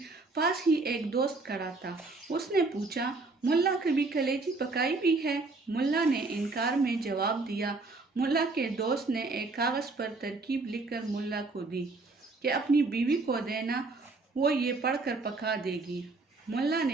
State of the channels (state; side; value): quieter; left; 3.5 dB